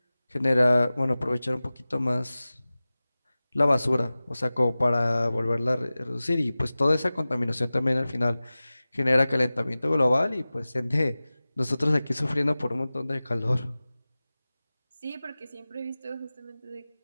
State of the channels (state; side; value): inverted; both; correlation -0.97